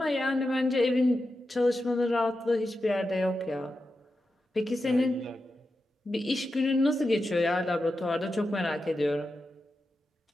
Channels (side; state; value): both; normal; correlation 0.90